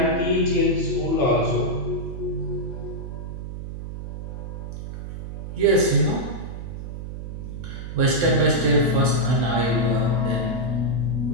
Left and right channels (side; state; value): right; noise; hum, 8 dB below the sound